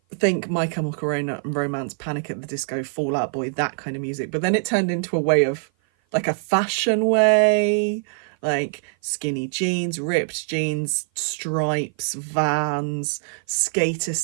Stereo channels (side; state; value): left; silent; 55 dB below the other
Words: Think My Chemical Romance, Panic at the Disco, Fall Out Boy, that kind of music. But then it turned into a way of, like, a fashion way, like skinny jeans, ripped jeans, stripes, Vans, skater